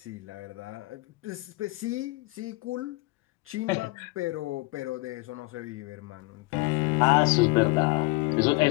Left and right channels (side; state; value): right; quieter; 23.7 dB